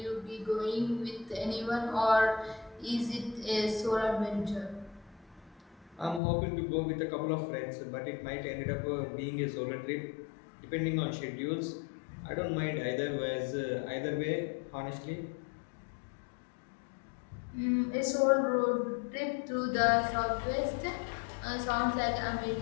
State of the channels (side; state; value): right; drops out; at 6.2 s